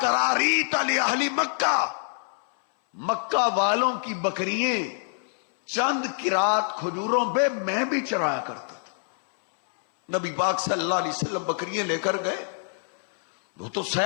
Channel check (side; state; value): right; silent; 61 dB below the other